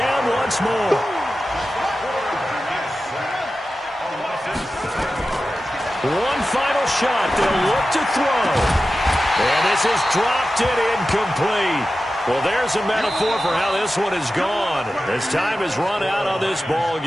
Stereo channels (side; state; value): both; normal; correlation 0.93